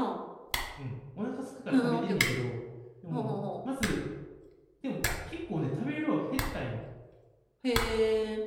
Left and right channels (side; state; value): both; identical; correlation 1.00